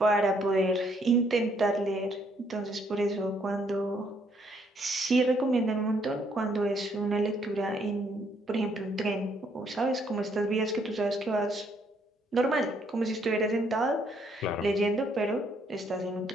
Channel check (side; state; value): both; normal; correlation 0.69